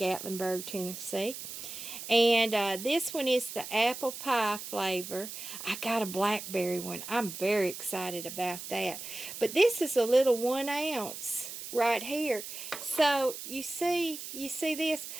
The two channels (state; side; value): noise; right; hiss, 9 dB below the sound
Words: Tennessee. And this one is the apple pie flavor. I got a blackberry one. I'm very excited about that. But this is a little 1 ounce right here. So you see this?